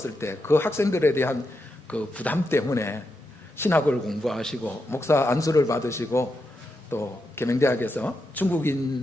때 그 학생들에 대한 그 부담 때문에 신학을 공부하시고 목사 안수를 받으시고 또 계명대학에서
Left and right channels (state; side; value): normal; both; correlation 0.85